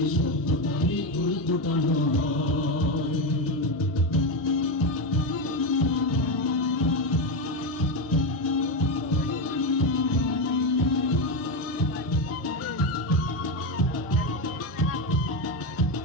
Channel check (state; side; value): normal; both; correlation 0.11